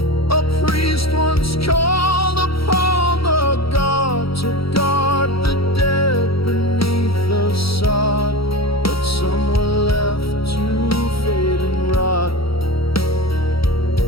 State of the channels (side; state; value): right; late; 0.75 ms